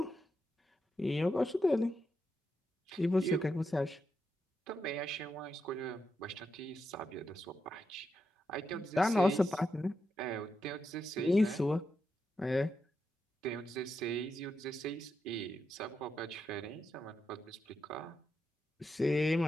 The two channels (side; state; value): both; normal; correlation 0.85